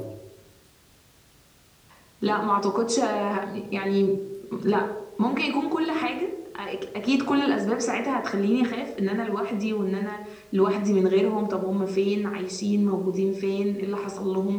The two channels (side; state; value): both; identical; correlation 1.00